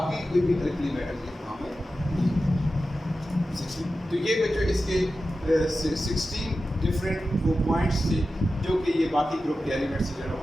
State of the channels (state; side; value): normal; both; correlation 0.93